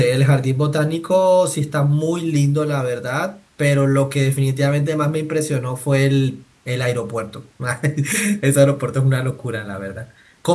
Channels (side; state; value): both; identical; correlation 1.00